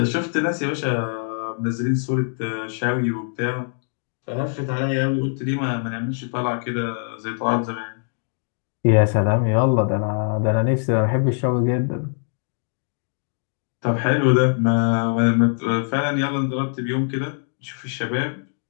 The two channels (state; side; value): silent; right; 64 dB below the other